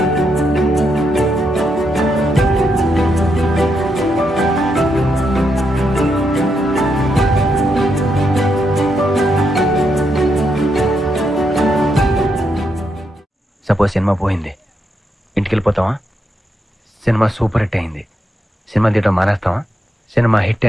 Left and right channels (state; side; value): normal; both; correlation 0.81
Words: Suppose cinema పోయింది, ఇంటికి వెళ్ళిపోతావా? Cinema super hit అయింది, cinema తీయడం మానేస్తావా? సినిమా హిట్